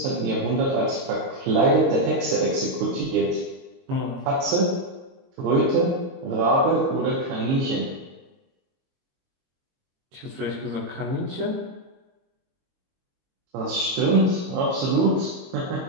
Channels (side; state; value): left; late; 22 ms